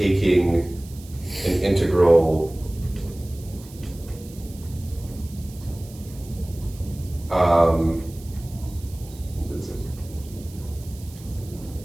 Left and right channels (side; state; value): right; noise; hiss, 21 dB below the sound